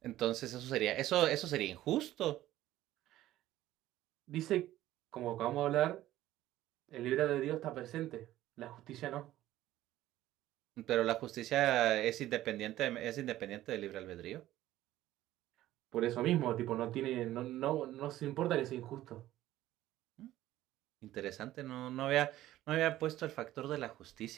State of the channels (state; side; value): quieter; left; 14.5 dB